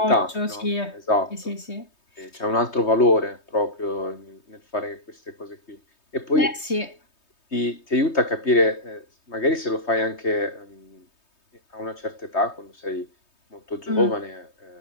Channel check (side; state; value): right; late; 3.2 ms